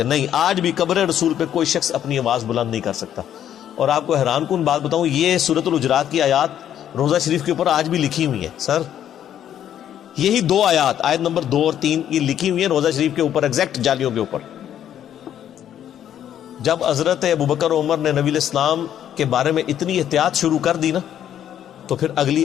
نہیں, آج بھی قبر رسول پہ کوئی شخص اپنی آواز بلند نہیں کر سکتا. اور آپ کو حیران کن بات بتاؤں, یہ سورۃ الحجرات کی آیات روضہ شریف کے اوپر آج بھی لکھی ہوئی ہیں. سر یہی دو آیات, آیت نمبر 2 اور 3, یہ لکھی ہوئی ہیں روضہ شریف کے اوپر, ایگزیکٹ جالیوں کے اوپر. جب حضرت ابوبکر عمر نے نبی الاسلام کے بارے میں اتنی احتیاط شروع کر دی نا, تو پھر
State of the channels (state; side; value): quieter; right; 10.4 dB